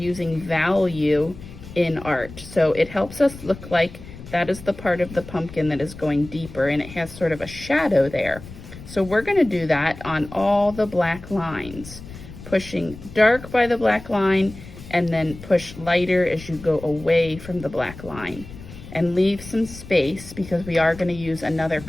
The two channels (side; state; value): left; noise; rumble, 15 dB below the sound